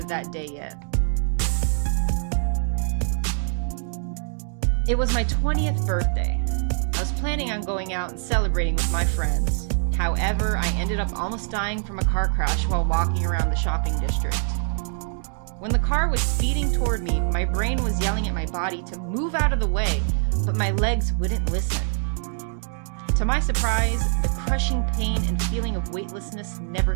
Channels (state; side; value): silent; left; digital silence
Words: that day yet. It was my 20th birthday. I was planning on going out and celebrating with my friends. However, I ended up almost dying from a car crash while walking around the shopping district. When the car was speeding toward me, my brain was yelling at my body to move out of the way, but my legs wouldn't listen. To my surprise, the crushing pain and feeling of weightlessness never